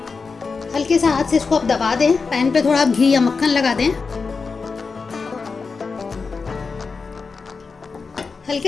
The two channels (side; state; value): right; quieter; 4.7 dB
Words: हल्के से हाथ से इसको आप दबा दें। पैन पे थोड़ा घी या मक्खन लगा दें, हल्के